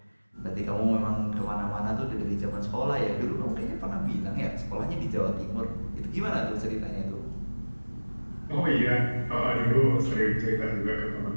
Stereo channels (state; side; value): inverted; both; correlation -1.00